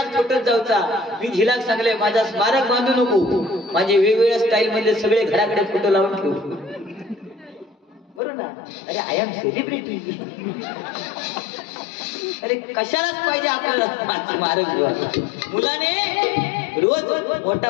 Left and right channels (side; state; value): right; drops out; at 8.2 s